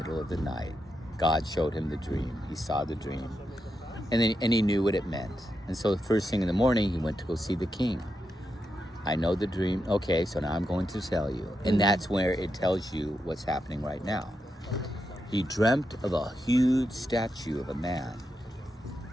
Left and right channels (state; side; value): normal; both; correlation 0.85